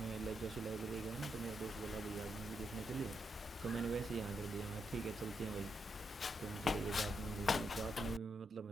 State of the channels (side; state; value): both; normal; correlation 0.82